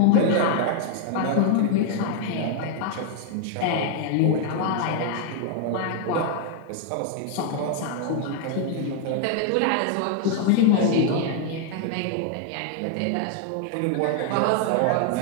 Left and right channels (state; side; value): different; both; correlation 0.00